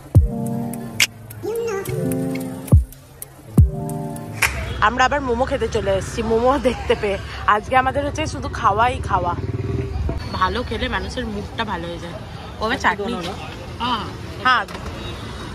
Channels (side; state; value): both; identical; correlation 1.00